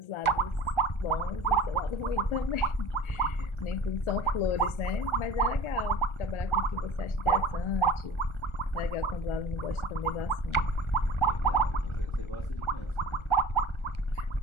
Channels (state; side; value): late; right; 1.4 ms